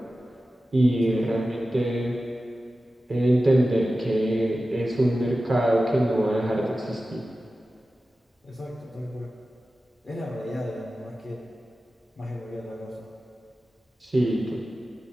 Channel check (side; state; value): both; normal; correlation 0.94